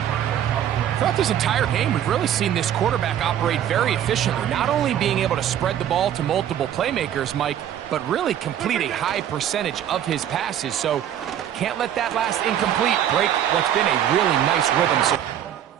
Throughout this entire game, we've really seen this quarterback operate very efficiently, not only being able to spread the ball to multiple playmakers, Mike, but really complete a high percentage of his passes. So can't let that last incomplete break what's been a really nice rhythm. So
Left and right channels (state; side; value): quieter; left; 10.4 dB